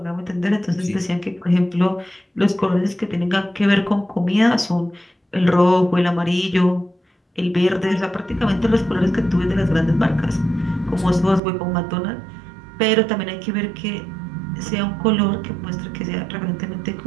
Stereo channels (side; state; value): left; drops out; at 11.4 s